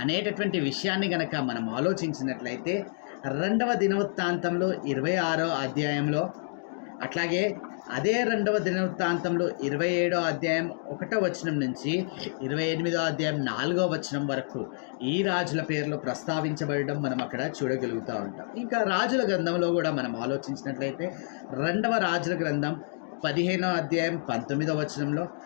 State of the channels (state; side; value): silent; right; digital silence